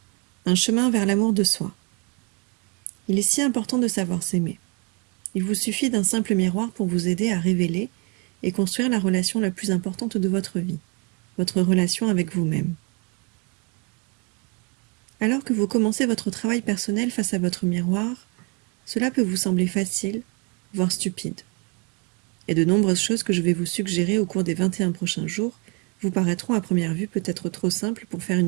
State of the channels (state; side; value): quieter; left; 31.2 dB